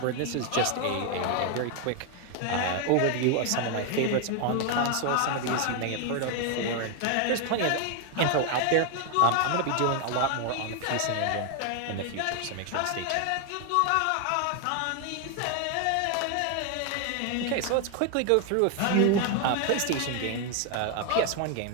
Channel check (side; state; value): both; different; correlation 0.00